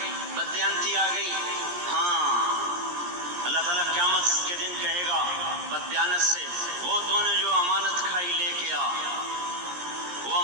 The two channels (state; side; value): late; left; 17 ms